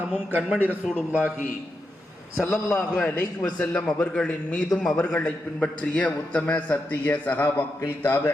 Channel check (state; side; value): normal; both; correlation 0.86